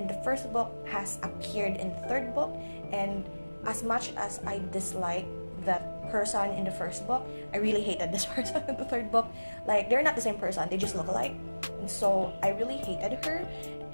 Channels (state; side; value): inverted; both; correlation -1.00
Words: the first book has appeared in the third book. And as much as I dislike that person in the first book, I really hated this person in the third book. Like, they're not the same person, they just look alike. And so I really hated her,